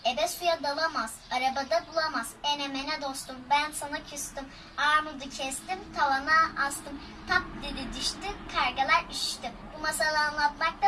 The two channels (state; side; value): identical; both; correlation 1.00